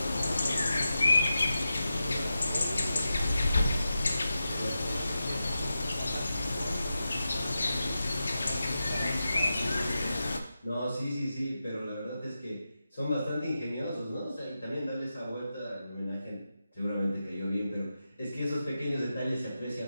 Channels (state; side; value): inverted; both; correlation -0.90